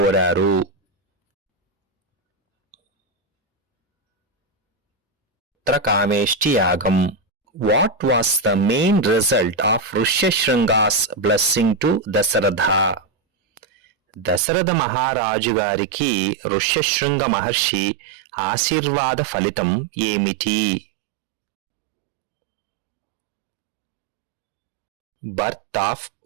పుత్రకామేష్టి యాగం. What was the main result of Rishyasringa's blessing to Dasharatha? Dasharatha మహారాజు గారికి ఋష్యశృంగ మహర్షి ఆశీర్వాద ఫలితం ఏమిటి? Birth of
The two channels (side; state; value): left; drops out; at 14.4 s